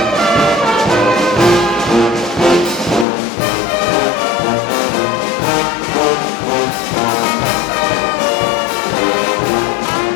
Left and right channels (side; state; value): right; drops out; at 3.1 s